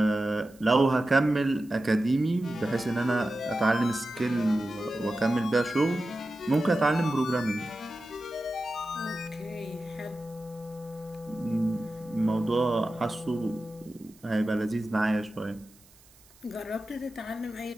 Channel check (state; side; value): noise; right; hiss, 27 dB below the sound